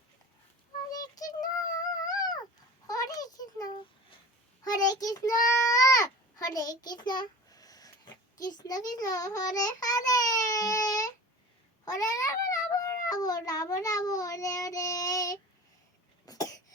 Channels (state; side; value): normal; both; correlation 0.36